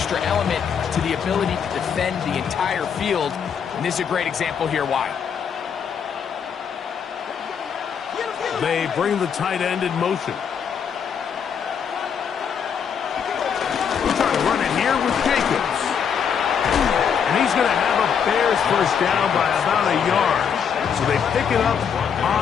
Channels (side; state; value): right; quieter; 7.3 dB